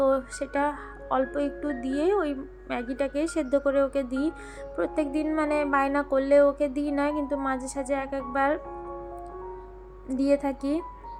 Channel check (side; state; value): both; identical; correlation 1.00